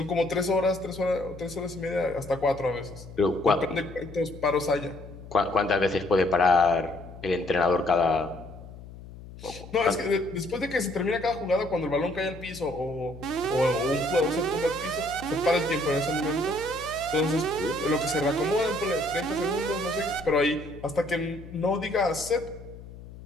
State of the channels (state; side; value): noise; left; hum, 16 dB below the sound